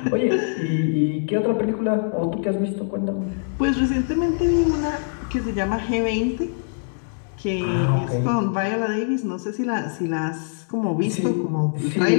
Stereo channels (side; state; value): right; silent; digital silence